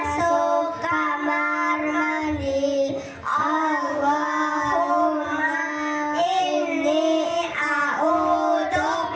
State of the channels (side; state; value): both; identical; correlation 1.00